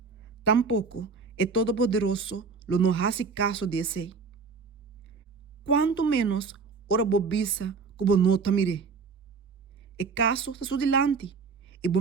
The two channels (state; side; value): quieter; left; 4.8 dB